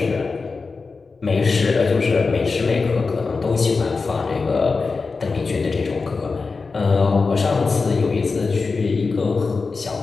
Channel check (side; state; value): right; quieter; 4.3 dB